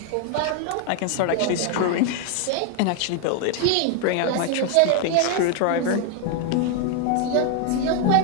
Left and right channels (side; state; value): both; different; correlation 0.01